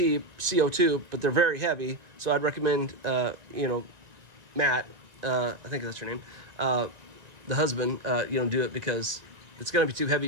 but they're very heavy. So I'd recommend, Matt, I think that's your name, the husband, do it because it's going to be too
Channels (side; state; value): left; late; 1.9 ms